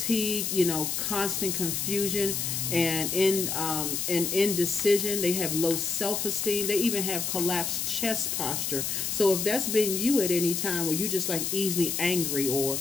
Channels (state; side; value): noise; left; hiss, 1 dB below the sound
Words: you know, constant confusion and indecision. They have low self-esteem. They even have collapsed chest posture. So if that's been you at any time where you just like easily angry, or